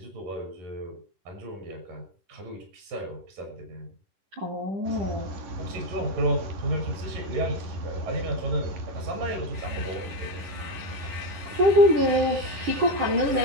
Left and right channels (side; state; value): left; late; 10 ms